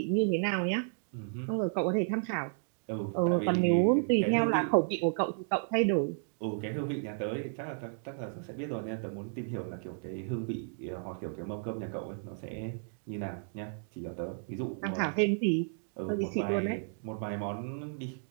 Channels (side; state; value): left; silent; digital silence